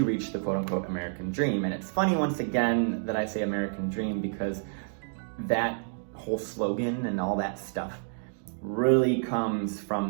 reach the quote-unquote American dream. And it's funny, once again, that I say American dream, because that whole slogan and all that stuff really comes from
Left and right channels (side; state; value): left; silent; digital silence